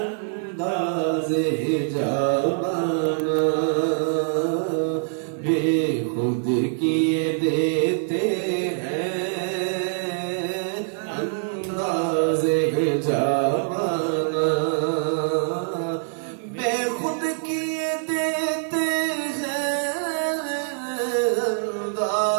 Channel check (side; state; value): left; silent; digital silence